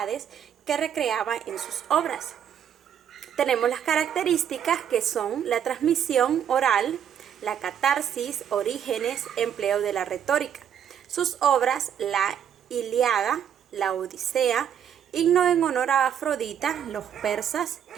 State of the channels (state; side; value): quieter; left; 9.0 dB